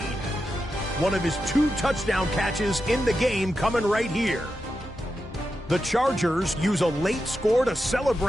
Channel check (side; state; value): both; normal; correlation 0.89